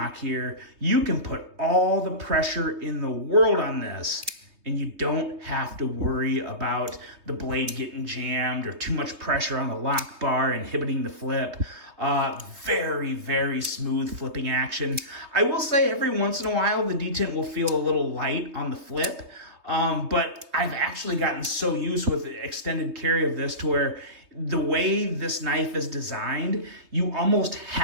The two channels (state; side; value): late; left; 3.2 ms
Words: here, you can put all the pressure in the world on this, and you don't have to worry about the blade getting jammed or too much pressure on the lock bar inhibiting the flip. Very, very smooth flipping action. I will say every once in a while the detent will feel a little light on the flip, but I've actually gotten so used with extended carry of this to where the way this knife is designed, you almost